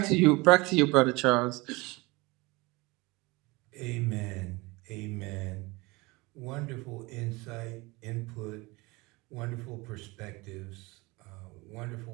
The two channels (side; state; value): left; quieter; 23.9 dB